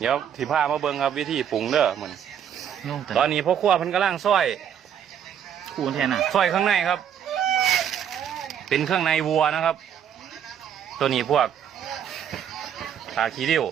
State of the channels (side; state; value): left; quieter; 9.0 dB